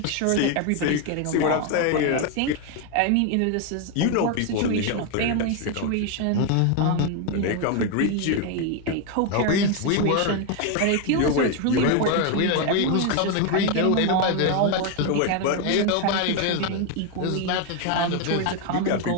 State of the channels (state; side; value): different; both; correlation 0.01